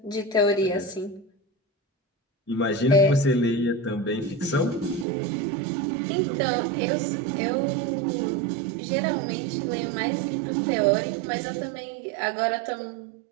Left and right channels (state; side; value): drops out; left; at 5.1 s